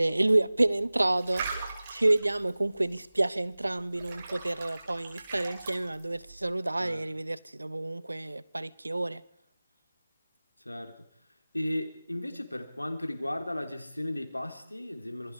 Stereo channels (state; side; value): inverted; both; correlation -0.98